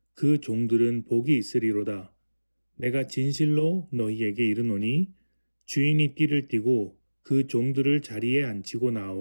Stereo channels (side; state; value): both; inverted; correlation -1.00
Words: 그 종들은 복이 있으리로다. 내가 진실로 너희에게 이르노니 주인이 띠를 띠고 그 종들을 자리에 앉히고